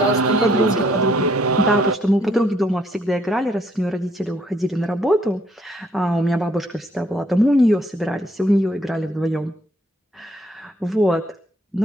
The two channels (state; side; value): normal; both; correlation 0.68